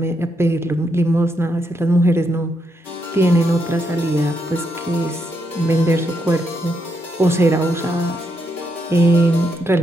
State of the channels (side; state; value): both; normal; correlation 0.79